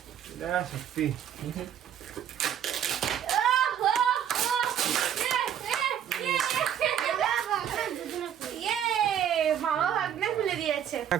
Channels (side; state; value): left; quieter; 9.5 dB